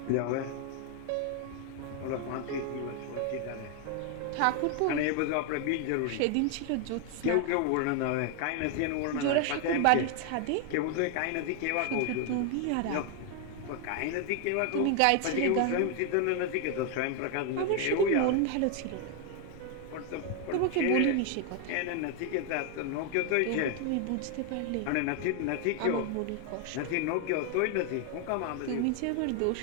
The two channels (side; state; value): both; different; correlation 0.01